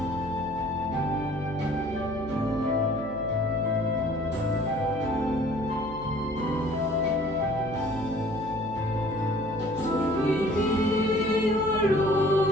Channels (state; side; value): noise; right; hum, 13 dB below the sound